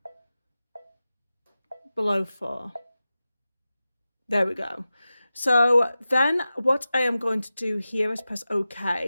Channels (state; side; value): inverted; both; correlation -0.94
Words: below 4. There we go. So then what I am going to do here is press